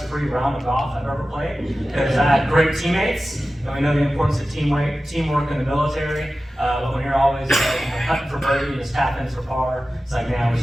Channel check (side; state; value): both; normal; correlation 0.95